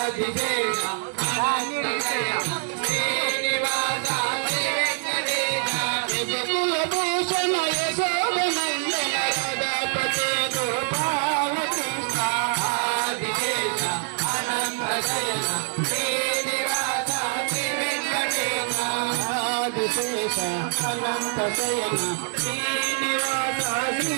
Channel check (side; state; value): left; silent; digital silence